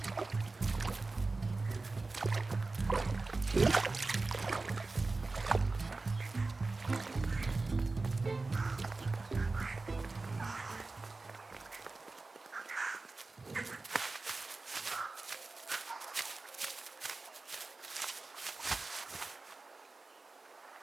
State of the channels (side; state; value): left; quieter; 3.5 dB